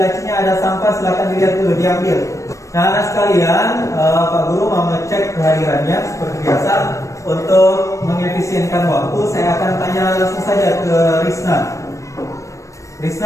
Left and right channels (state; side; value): late; right; 0.15 ms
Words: ada sampah, silakan dilihat dulu, diambil. Nah, anak sekalian, Pak Guru mau ngecek kehadirannya seperti biasa. Untuk mengefisienkan waktu, saya akan tanya langsung saja ke Risna.